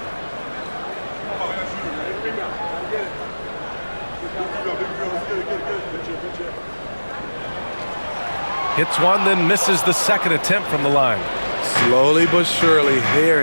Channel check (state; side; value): inverted; both; correlation -1.00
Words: Hits one, then misses the second attempt from the line. Slowly but surely,